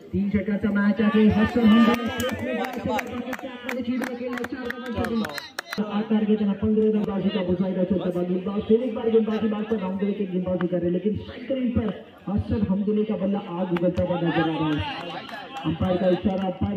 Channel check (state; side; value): identical; both; correlation 1.00